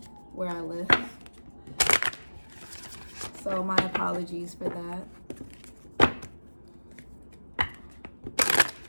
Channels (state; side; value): inverted; both; correlation -1.00